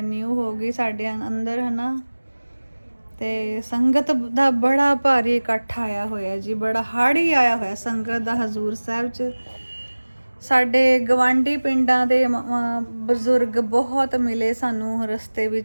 ਹੋ ਗਈ ਸਾਡੇ ਅੰਦਰ, ਹੈ ਨਾ। ਤੇ ਸੰਗਤ ਦਾ ਬੜਾ ਭਾਰੀ ਇਕੱਠ ਆਇਆ ਹੋਇਆ ਜੀ, ਬੜਾ ਹਾੜੀ ਆਇਆ ਹੋਇਆ ਸੰਗਤ ਦਾ ਹਜ਼ੂਰ ਸਾਹਿਬ 'ਚ। ਸਾਡੇ ਗਵਾਂਢੀ ਪਿੰਡਾਂ ਦੇ ਬਜ਼ੁਰਗ ਬਹੁਤ ਮਿਲੇ ਸਾਨੂੰ ਰਸਤੇ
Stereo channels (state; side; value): inverted; both; correlation -1.00